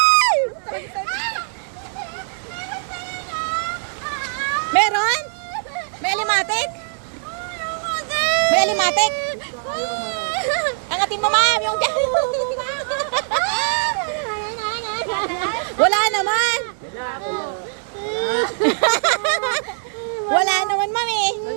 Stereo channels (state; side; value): silent; left; 65 dB below the other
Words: Meron? May alimatik? May alimatik? Angatin mo ma'am, yung dyan. Wala naman. Wala naman ma'am eh.